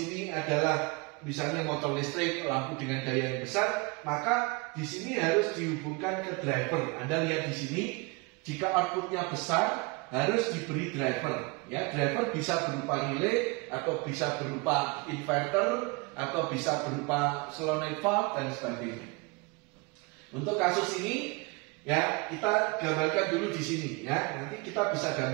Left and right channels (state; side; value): quieter; left; 27.7 dB